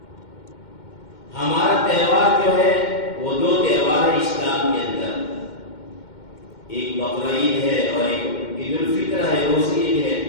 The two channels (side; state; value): right; late; 2.1 ms